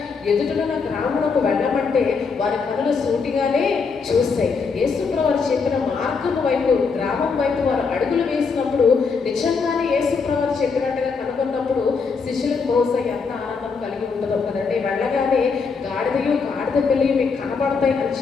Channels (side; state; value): right; quieter; 5.1 dB